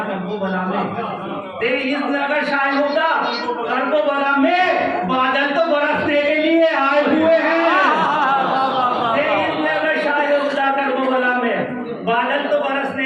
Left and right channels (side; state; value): both; identical; correlation 1.00